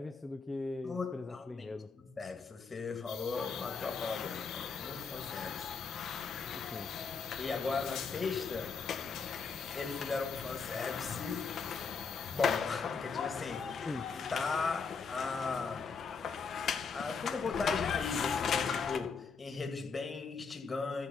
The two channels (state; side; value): quieter; right; 5.2 dB